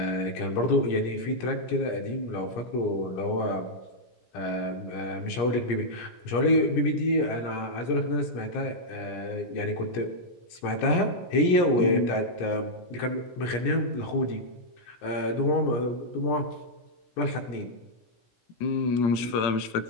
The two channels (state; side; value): late; right; 17 ms